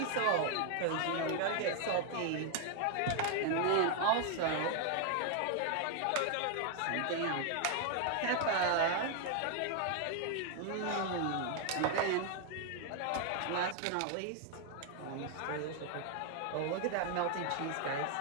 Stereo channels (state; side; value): different; both; correlation 0.00